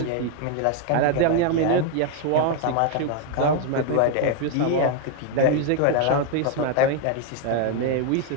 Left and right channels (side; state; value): both; different; correlation 0.00